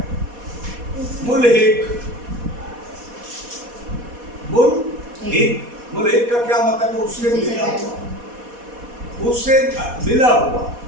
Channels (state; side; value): late; left; 4.1 ms